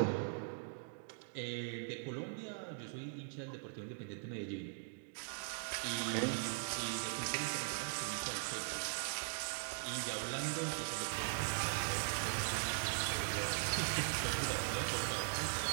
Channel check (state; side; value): silent; left; digital silence